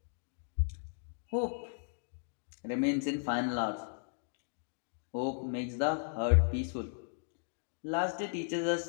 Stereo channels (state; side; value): silent; right; digital silence